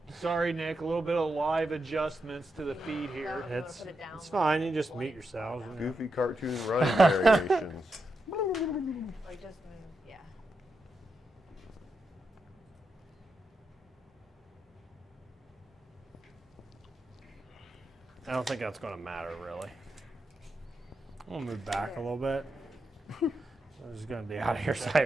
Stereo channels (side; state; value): both; normal; correlation 0.86